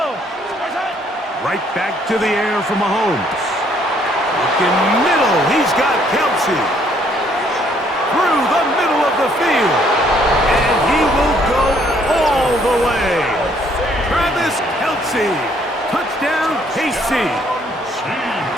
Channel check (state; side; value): normal; both; correlation 0.66